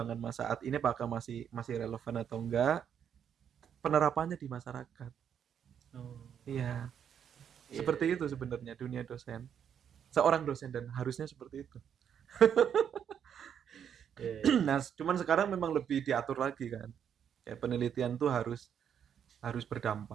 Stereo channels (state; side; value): quieter; left; 8.5 dB